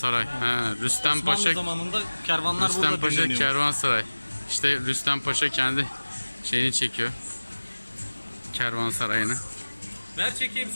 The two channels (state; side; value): inverted; both; correlation -1.00